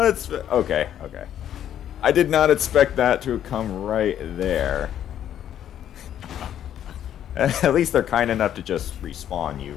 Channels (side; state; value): right; quieter; 10.4 dB